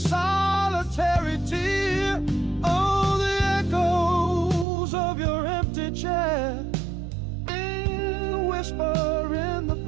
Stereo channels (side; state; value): left; drops out; at 4.7 s